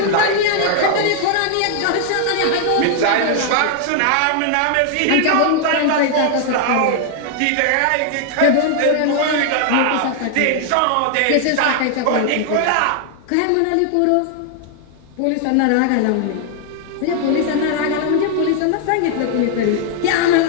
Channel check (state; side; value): different; both; correlation 0.00